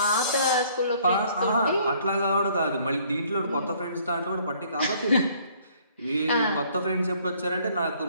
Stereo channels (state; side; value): inverted; both; correlation -0.61